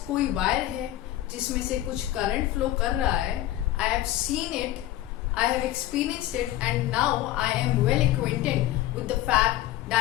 कोई वायर है जिसमें से कुछ करंट फ्लो कर रहा है, I have seen it, I have experienced it, and now I am well acquainted with the fact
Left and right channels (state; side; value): quieter; right; 14.4 dB